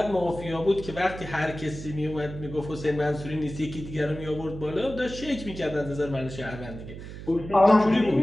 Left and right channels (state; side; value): noise; right; hum, 11 dB below the sound